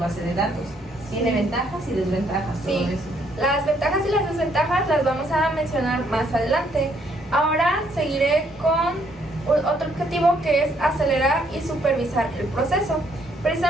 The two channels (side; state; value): both; normal; correlation 0.69